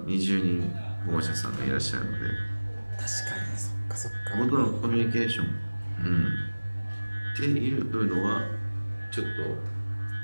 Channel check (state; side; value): inverted; both; correlation -1.00